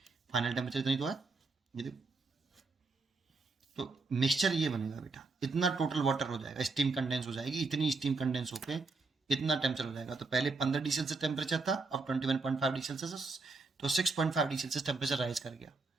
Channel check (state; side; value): quieter; left; 3.8 dB